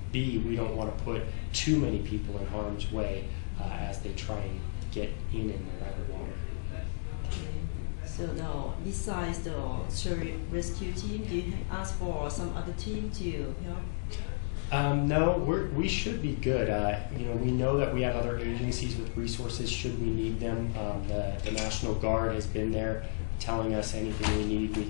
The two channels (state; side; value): silent; right; digital silence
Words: B, we don't want to put too many people in harm's way as they try and get in and around the water. Okay. So now, besides the search rescue team, do you ask for some other team to help? No, we should be good. We know that we have other agencies with resources should we need them. The National Guard has been there telling us anything we need, we